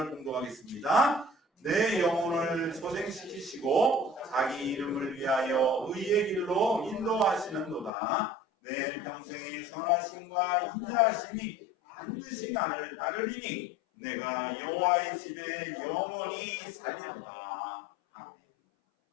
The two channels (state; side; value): drops out; right; at 7.9 s